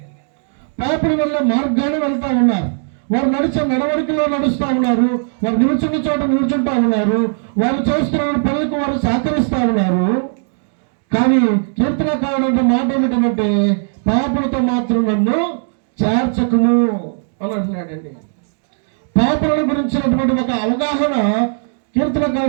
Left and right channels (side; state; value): left; silent; digital silence